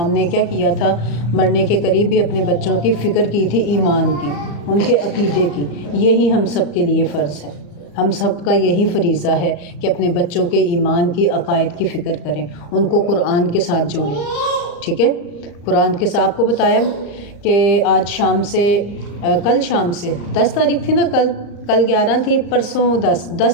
نے کیا کیا تھا، مرنے کے قریب بھی اپنے بچوں کی فکر کی تھی، ایمان کی، ان کے عقیدے کی۔ یہی ہم سب کے لیے فرض ہے، ہم سب کا یہی فریضہ ہے کہ اپنے بچوں کے ایمان کی، عقائد کی فکر کریں، ان کو قرآن کے ساتھ جوڑیں، ٹھیک ہے۔ قرآن کے ساتھ آپ کو بتایا کہ آج شام سے، کل شام سے 10 تاریخ تھی نا، کل 11 تھی، پرسوں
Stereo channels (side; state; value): right; late; 34 ms